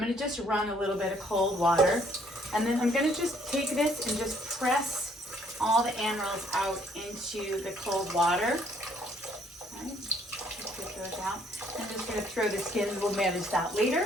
to just run a little bit of cold water. And then I'm going to just take this and just press all the annuals out into the cold water. All right, just get those out. I'm just going to throw the skins. We'll manage that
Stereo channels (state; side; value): normal; both; correlation 0.64